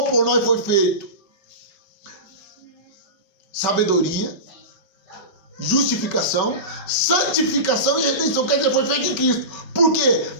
por nós foi feito sabedoria, justificação, santificação e redenção. Quer dizer, foi feito em Cristo. Por quê?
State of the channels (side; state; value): right; late; 5.0 ms